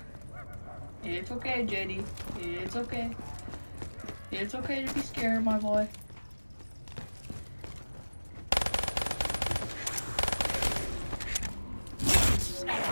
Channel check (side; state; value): both; inverted; correlation -1.00